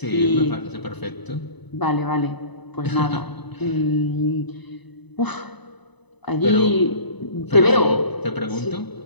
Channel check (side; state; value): right; late; 1.0 ms